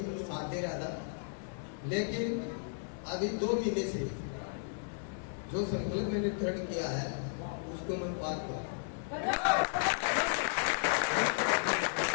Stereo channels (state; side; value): silent; right; 55 dB below the other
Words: साथ दे रहा था, लेकिन अभी 2 महीने से जो संकल्प मैंने दृढ़ किया है उसको मैं पार करूं।